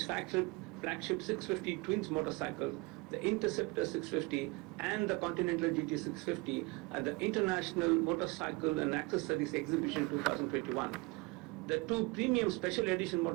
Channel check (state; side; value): quieter; left; 25.6 dB